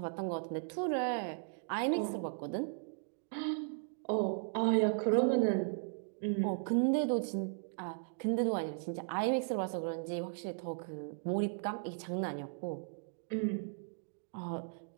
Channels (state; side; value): silent; left; digital silence